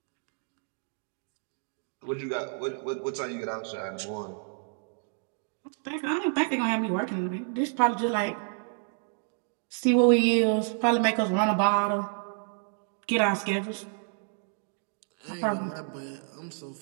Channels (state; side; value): silent; left; 58 dB below the other